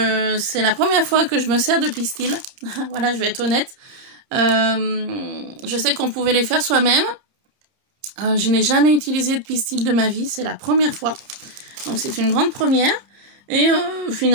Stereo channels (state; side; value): late; left; 30 ms